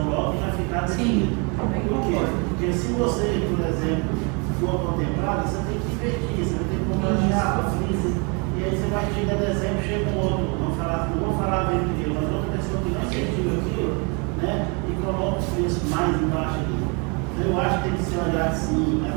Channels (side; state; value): left; quieter; 33.0 dB